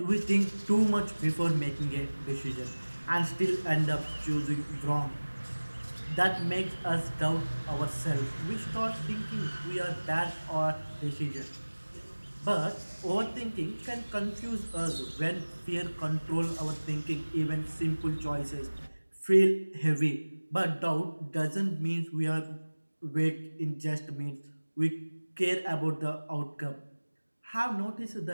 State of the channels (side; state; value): both; inverted; correlation -1.00